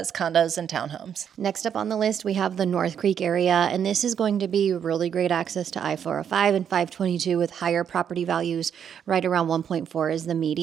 condos and townhomes. Next up on the list, we have the North Creek area, and this is going to be really great access to I-405 and 522 with higher property values. Right around 1.4 is the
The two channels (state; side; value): quieter; left; 8.3 dB